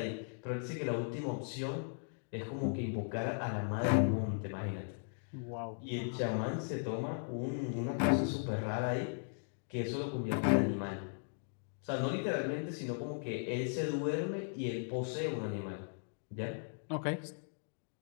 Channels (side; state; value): right; silent; digital silence